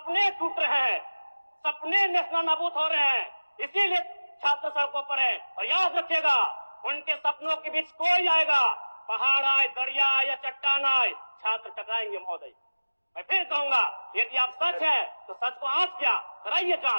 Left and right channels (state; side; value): inverted; both; correlation -1.00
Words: टूट रहे हैं, सपने नेशनल नाबूद हो रहे हैं, इसीलिए छात्र सड़कों पर है। और याद रखिएगा, उनके सपनों के बीच कोई आएगा, पहाड़ आए, दरिया आए या चट्टान आए, छात्र टकराएंगे महोदय। मैं फिर कहूंगा, यदि आप सच है तो सच को आंच क्या कराइए